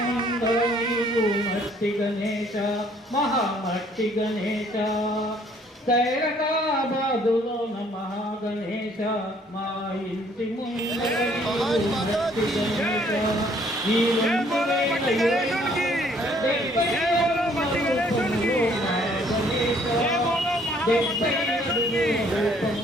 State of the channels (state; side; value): normal; both; correlation 0.62